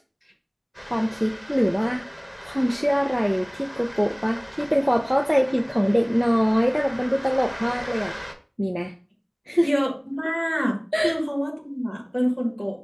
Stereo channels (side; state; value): both; identical; correlation 1.00